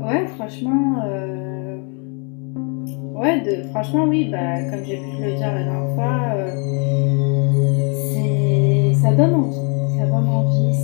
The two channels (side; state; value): right; quieter; 37.1 dB